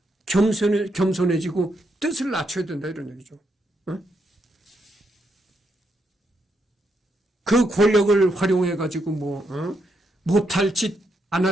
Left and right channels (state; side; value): normal; both; correlation 0.79